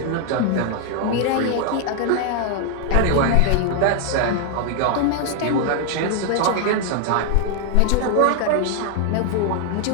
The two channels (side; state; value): both; different; correlation 0.00